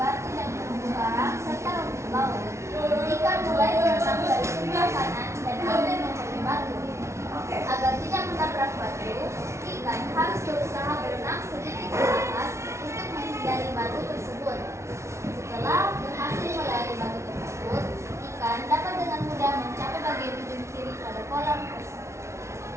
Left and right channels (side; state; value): left; late; 0.13 ms